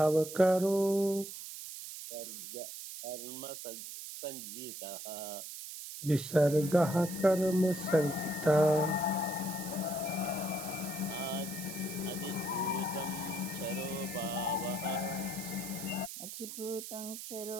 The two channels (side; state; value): right; noise; hiss, 9 dB below the sound